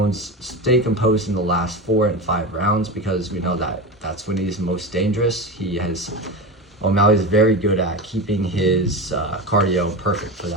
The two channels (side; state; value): both; normal; correlation 0.23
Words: in the last 4 and 5 rounds, because we know that that's when he's most dangerous. O'Malley's very good at keeping his cardio perfect for